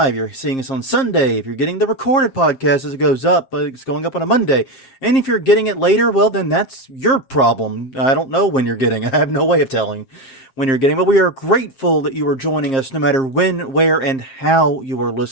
you're seeing us on Sunday. If you're getting the recorded podcast as it goes up, it's going up on a Monday. And if you're getting it later, well, then that's your problem. I don't know when you're getting. I have no way of telling when you're getting. But we are grateful that you are joining us no matter when, where, and how you are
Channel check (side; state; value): right; late; 7.5 ms